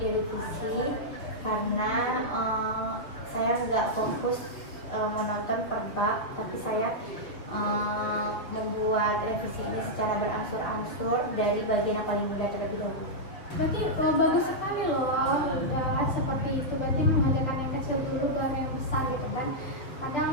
karena saya nggak fokus menonton per bab, tapi saya membuat revisi ini secara berangsur-angsur dari bagian yang paling mudah terlebih dahulu. Berarti bagus sekali loh, udah seperti itu. Berarti mengerjakan yang kecil dulu baru yang besar gitu kan. Kadang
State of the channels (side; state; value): right; late; 6.9 ms